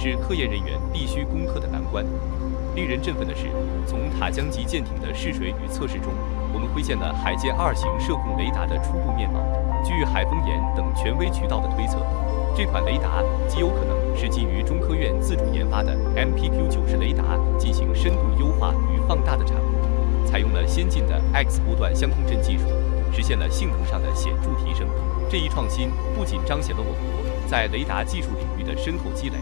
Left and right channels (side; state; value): right; quieter; 35.9 dB